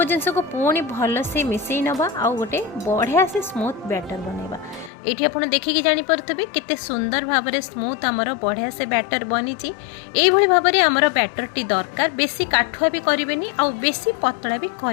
जिंस को पुणी भल से मिसई नबा आ गोटे बढ़िया से स्मूथ बैटर बनैबा। एठी आपण देखिकी जानि परथबे केते सुंदर भाबरे स्मूथ हमर बढ़िया से बैटर बनिची। एई भली भाबरे हमर बैटर टी दरकार। बेसी काठुआ भी करिवेनी आ बेसी पतला भी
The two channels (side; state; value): right; drops out; at 4.9 s